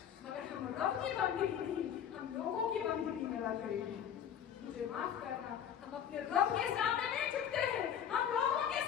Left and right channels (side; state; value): right; quieter; 9.0 dB